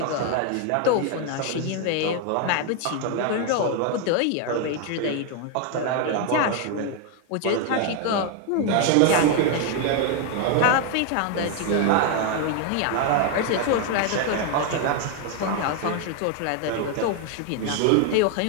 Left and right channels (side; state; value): both; different; correlation 0.01